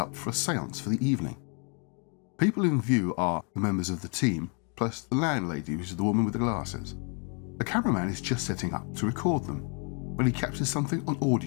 for a seance for the evening. People in view are the members of the team, plus the landlady, which is the woman with the glasses. The cameraman is just setting up to record them, when he captures something on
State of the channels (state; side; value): quieter; right; 37.3 dB